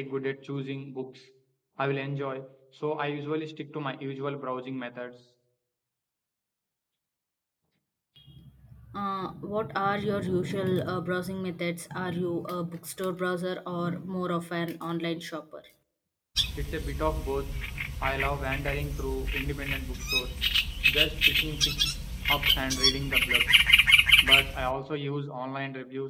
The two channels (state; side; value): identical; both; correlation 1.00